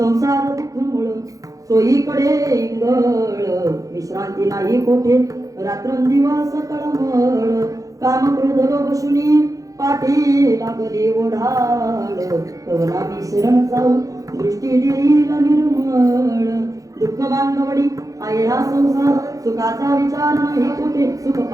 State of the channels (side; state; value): left; late; 0.17 ms